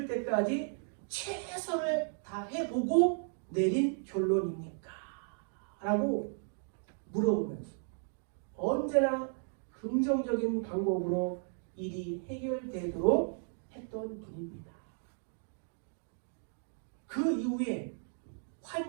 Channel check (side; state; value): left; silent; 54 dB below the other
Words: 때까지 최선을 다해보고 내린 결론입니까? 라고 물어보면서 언제나 긍정적인 방법으로 일이 해결되도록 했던 분입니다. 그 이후에